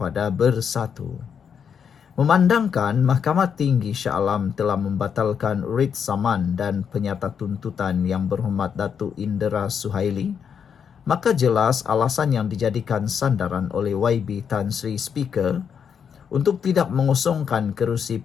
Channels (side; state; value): right; quieter; 7.3 dB